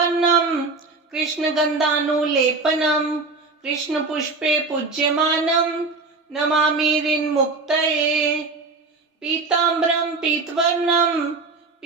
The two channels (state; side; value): quieter; left; 3.9 dB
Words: कृष्णगन्धानुलेपनं कृष्णपुष्पे पूज्यमानं नमामि ऋन्मुक्तये। पीताम्बरं पीतवर्णं